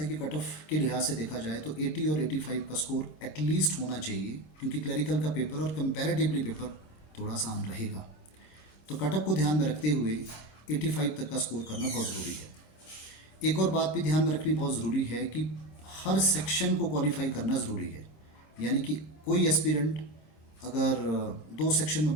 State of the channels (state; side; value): late; right; 25 ms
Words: कि कट ऑफ के लिहाज से देखा जाए तो 80 और 85 का स्कोर एटलीस्ट होना चाहिए, क्योंकि क्लरिकल का पेपर और कंपैरेटिवली पेपर थोड़ा आसान रहेगा। तो कट ऑफ को ध्यान में रखते हुए 85 तक का स्कोर करना बहुत ज़रूरी है। एक और बात भी ध्यान में रखनी बहुत ज़रूरी है कि हर सेक्शन को क्वालिफाई करना ज़रूरी है, यानी कि कोई एस्पिरेंट अगर 2 सेक्शन में